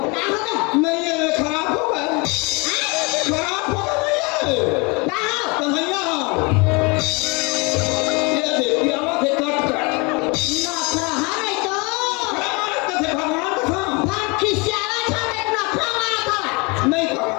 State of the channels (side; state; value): right; quieter; 28.6 dB